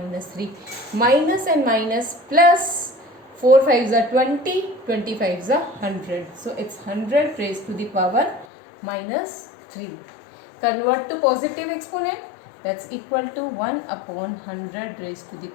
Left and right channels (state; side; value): drops out; right; at 8.5 s